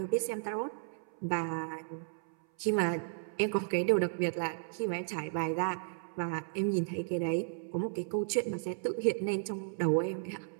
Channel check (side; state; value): left; silent; 55 dB below the other